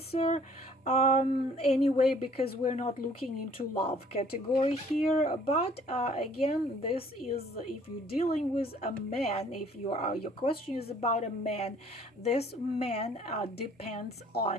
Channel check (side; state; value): both; normal; correlation 0.57